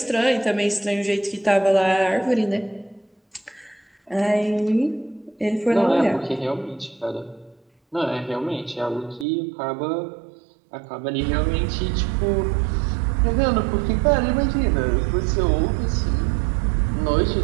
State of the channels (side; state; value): left; drops out; at 9.2 s